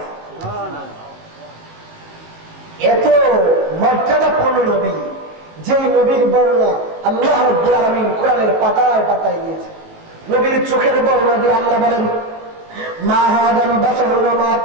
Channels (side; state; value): left; late; 19 ms